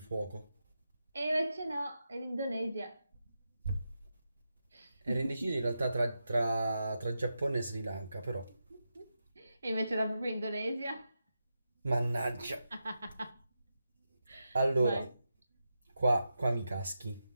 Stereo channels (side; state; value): both; inverted; correlation -0.88